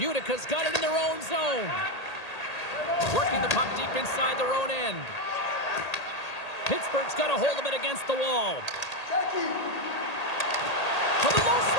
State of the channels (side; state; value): right; late; 1.8 ms